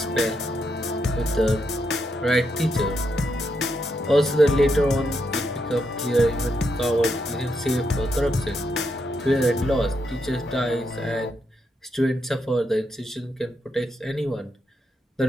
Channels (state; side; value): normal; both; correlation 0.81